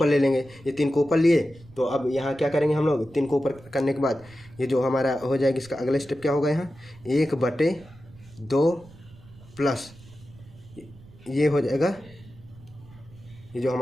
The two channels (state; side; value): noise; right; rumble, 22 dB below the sound